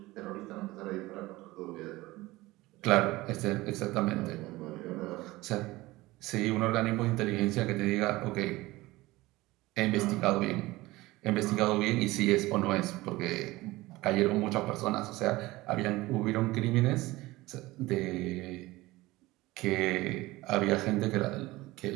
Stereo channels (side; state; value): left; quieter; 19.4 dB